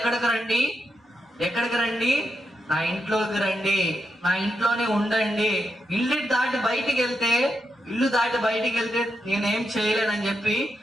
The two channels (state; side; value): normal; both; correlation 0.84